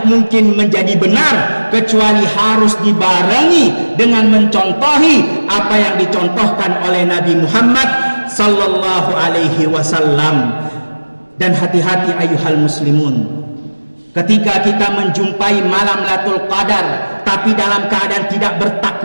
mungkin menjadi benar kecuali harus dibarengi dengan mencontohi apa yang dicontohkan oleh Nabi Muhammad sallallahu alaihi wasallam. Dan hati-hati ayuhal muslimun, ketika kita menjumpai malam Lailatul Qadar tapi dalam keadaan tidak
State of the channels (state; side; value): inverted; both; correlation -1.00